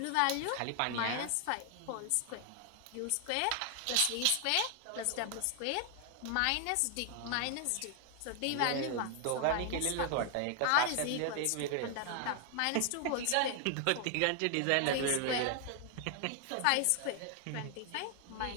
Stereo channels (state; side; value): different; both; correlation 0.00